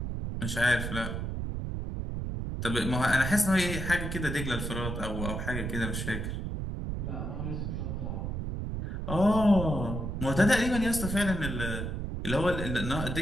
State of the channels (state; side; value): noise; right; rumble, 3 dB below the sound